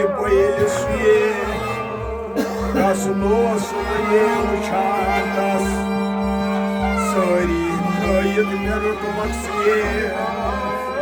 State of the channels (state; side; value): identical; both; correlation 1.00